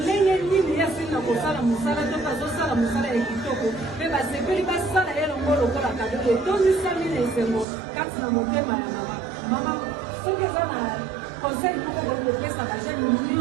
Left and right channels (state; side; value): drops out; left; at 7.7 s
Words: ndenge nini ye asili na kosala mosala to bazosala mosala ya kitoko mpe basepeli basala ye longo lokola kado etondisami na esengo kati na motema ya mama mama soki eza na conseil moko boye kopesa bajene